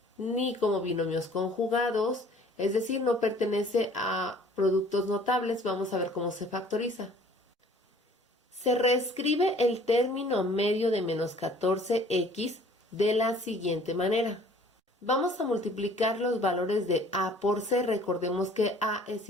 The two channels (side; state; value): both; normal; correlation 0.53